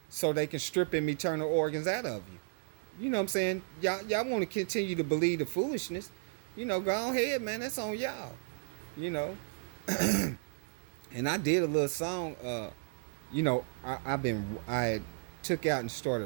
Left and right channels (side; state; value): left; silent; digital silence